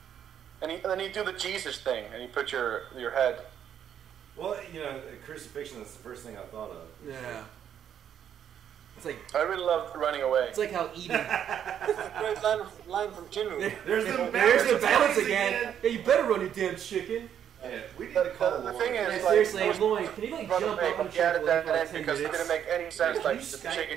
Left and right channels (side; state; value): left; quieter; 9.3 dB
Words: And then you do the Jesus thing, and you put your head. Well, crucifixion is the first thing I thought of. Yeah. It's like I really love running away. It's like how eating. Great line from Jimmy. There's the balance again. Yeah, you better run, you damn chicken. Yeah, we need to call the thing is, seriously, Lloyd, can you like jump up and added that in because it didn't make any sense. Like the chicken